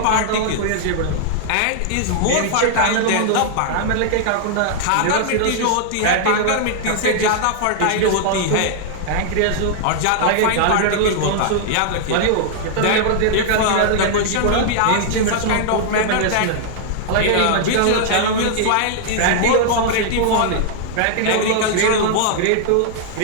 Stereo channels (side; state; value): both; different; correlation -0.01